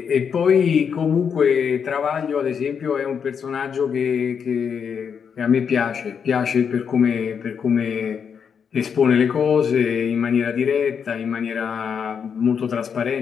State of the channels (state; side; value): quieter; right; 6.9 dB